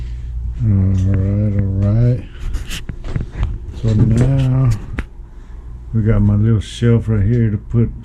All right. So now we got my little shelf right here to put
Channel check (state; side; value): identical; both; correlation 1.00